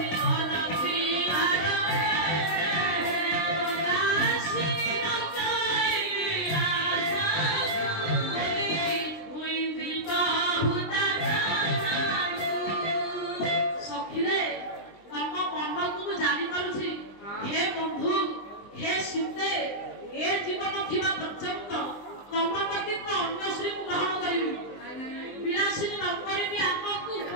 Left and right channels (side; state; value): right; late; 20 ms